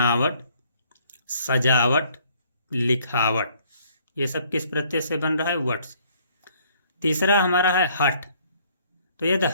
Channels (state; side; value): inverted; both; correlation -0.62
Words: सजावट, लिखावट। ये सब किस प्रत्यय से बन रहा है? वट से। तीसरा हमारा है हट। तो यदि